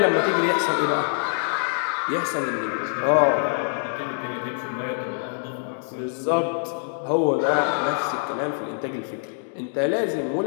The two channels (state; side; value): silent; right; 62 dB below the other